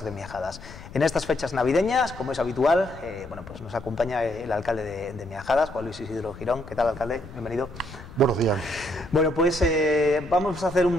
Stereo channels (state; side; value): noise; left; rumble, 16 dB below the sound